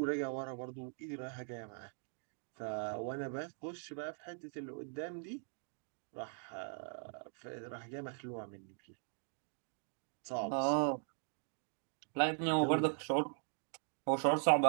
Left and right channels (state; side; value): silent; left; 51 dB below the other